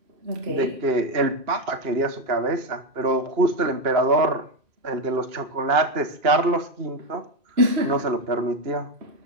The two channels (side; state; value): left; late; 2.8 ms